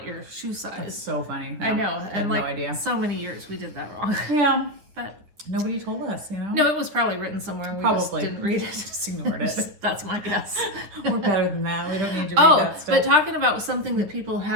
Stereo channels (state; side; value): late; left; 9.8 ms